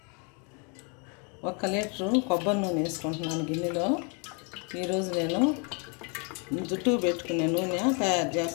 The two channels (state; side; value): quieter; right; 35.3 dB